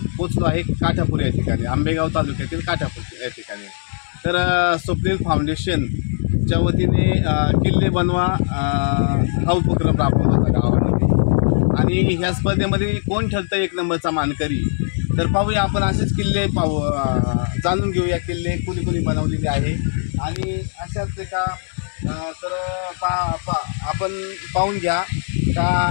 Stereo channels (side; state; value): right; silent; 66 dB below the other